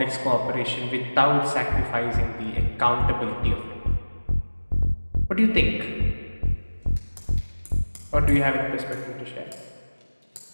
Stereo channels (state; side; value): inverted; both; correlation -1.00